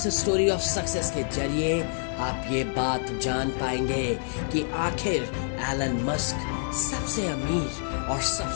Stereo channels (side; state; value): right; silent; 60 dB below the other